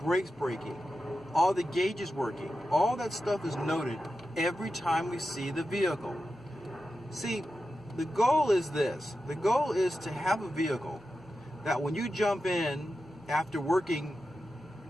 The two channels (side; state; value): both; normal; correlation 0.91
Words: braking? Are the gauges working? All that stuff is noted every time we see the vehicle. See, the goal is this. The goal is to have a vehicle that when you jump in after working